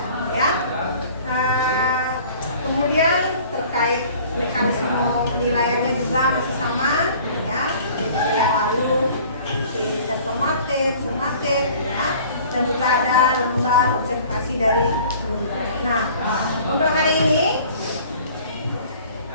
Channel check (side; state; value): both; inverted; correlation -0.50